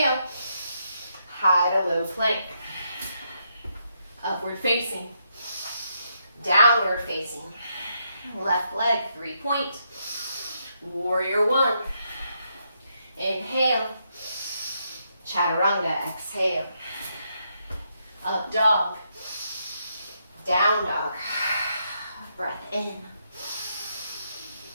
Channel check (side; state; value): both; inverted; correlation -0.79